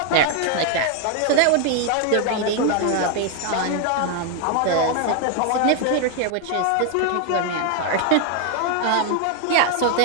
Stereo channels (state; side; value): different; both; correlation 0.01